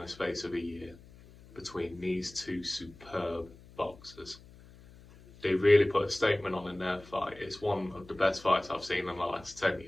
space of a year between these two superb boxers. They really put a statement on in their fight. It's one of the best fights I've seen in the last 10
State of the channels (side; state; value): left; noise; hum, 22 dB below the sound